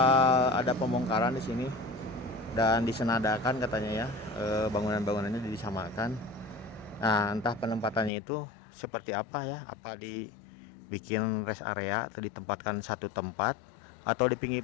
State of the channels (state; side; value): drops out; right; at 8.1 s